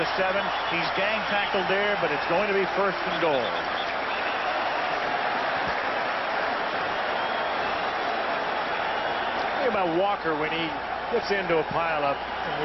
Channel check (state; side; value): identical; both; correlation 1.00